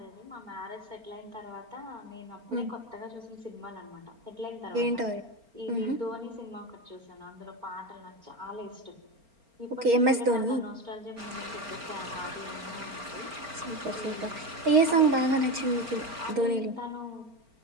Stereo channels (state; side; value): late; left; 4.4 ms